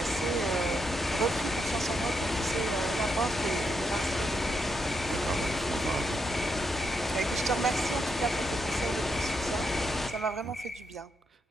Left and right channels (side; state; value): both; normal; correlation 0.81